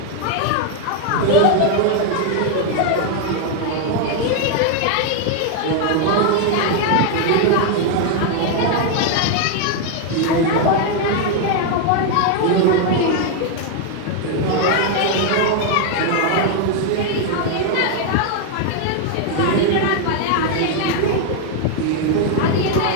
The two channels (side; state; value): both; different; correlation 0.00